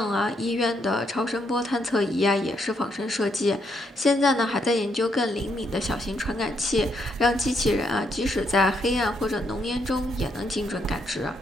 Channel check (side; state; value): both; normal; correlation 0.76